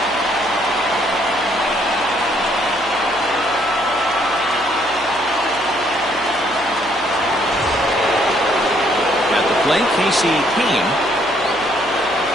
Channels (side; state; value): left; noise; hum, 22 dB below the sound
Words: At the plate, Casey Kane.